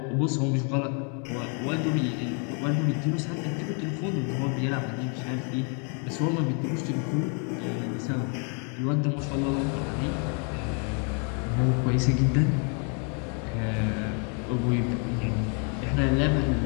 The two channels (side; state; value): right; quieter; 39.2 dB